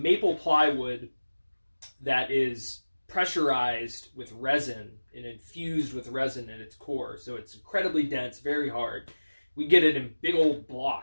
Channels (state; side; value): inverted; both; correlation -1.00